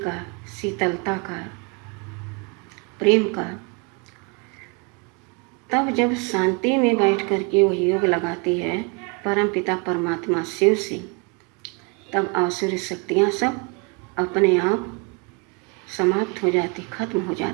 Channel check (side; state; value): left; quieter; 31.9 dB